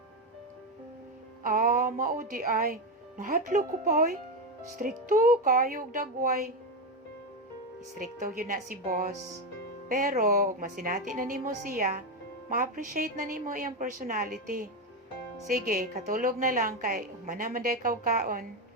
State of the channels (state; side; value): normal; both; correlation 0.11